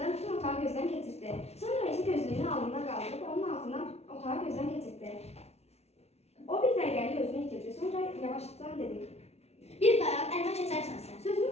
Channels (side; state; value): right; late; 0.31 ms